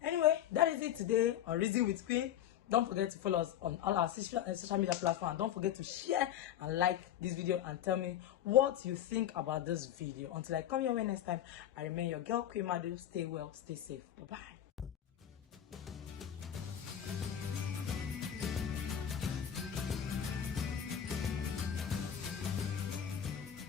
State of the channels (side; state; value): right; quieter; 10.4 dB